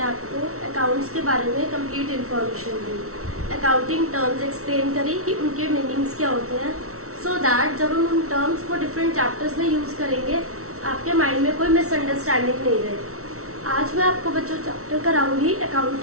आपको अकाउंट्स के बारे में कंप्लीट इन्फॉर्मेशन दी, अकाउंटिंग टर्म्स एक्सप्लेन करी कि उनके मीनिंग्स क्या होते हैं, सो दैट जब हम उन टर्म्स को डिफरेंट चैप्टर्स में यूज करेंगे आपके माइंड में कोई मिसअंडरस्टैंडिंग नहीं रहे। आज मैं आपको बच्चों चैप्टर कराऊंगी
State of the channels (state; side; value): late; left; 0.63 ms